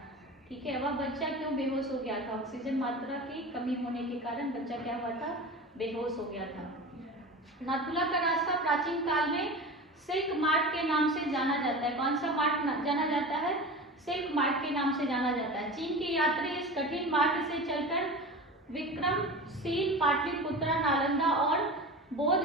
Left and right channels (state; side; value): normal; both; correlation 0.31